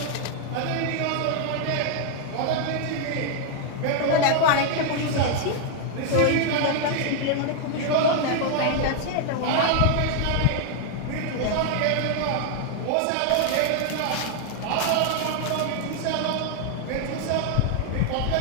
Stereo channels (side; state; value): both; different; correlation 0.00